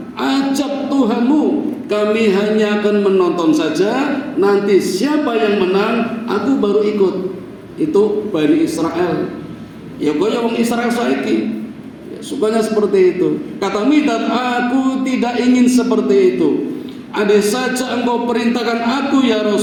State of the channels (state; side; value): identical; both; correlation 1.00